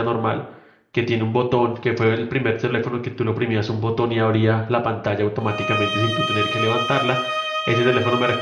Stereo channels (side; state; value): both; identical; correlation 1.00